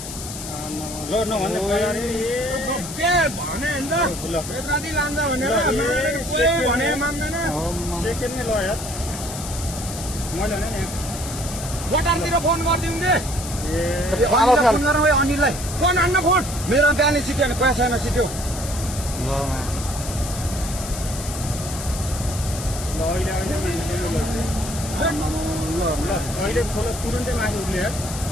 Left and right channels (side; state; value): left; noise; hiss, 9 dB below the sound